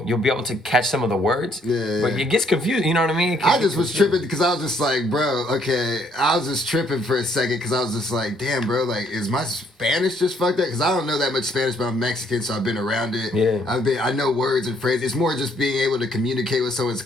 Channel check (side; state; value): both; normal; correlation 0.67